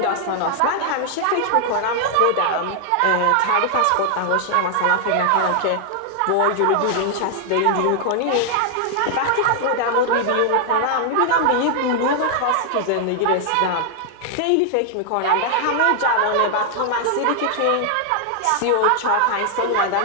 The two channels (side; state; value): both; different; correlation 0.00